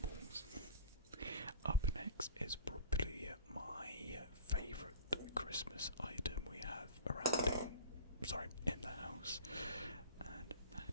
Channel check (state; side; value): inverted; both; correlation -0.38